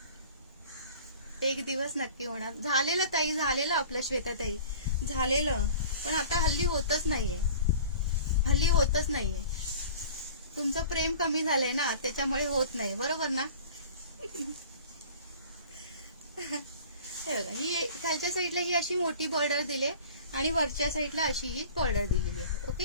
एक दिवस नक्की होणार. झालेलं ताई, झालेलं आपलं श्वेता ताई, झालेलं. पण आता हल्ली होतच नाहीये. तुमचं प्रेम कमी झालंय ना, त्याच्यामुळे होत नाही. बरोबर ना? हे बघा, ही खालच्या साईडला ही अशी मोठी बॉर्डर दिले आणि वरच्या साईडला अशी ही बॉर्डर दिलेली आहे.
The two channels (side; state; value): both; inverted; correlation -0.44